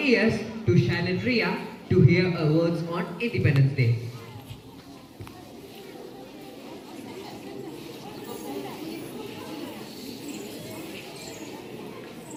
to Shailin Ria to hear her words on Independence Day.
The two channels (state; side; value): identical; both; correlation 1.00